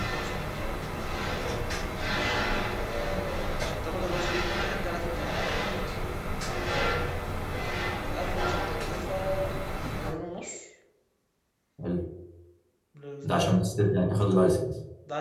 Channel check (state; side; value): identical; both; correlation 1.00